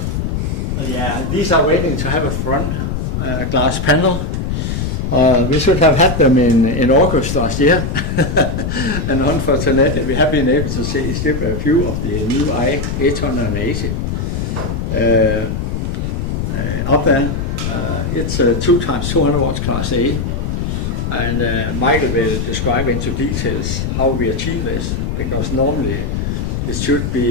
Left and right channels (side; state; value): left; noise; rumble, 2 dB below the sound